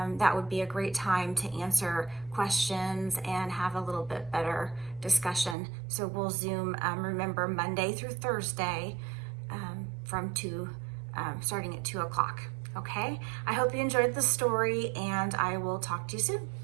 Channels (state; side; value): drops out; left; at 5.6 s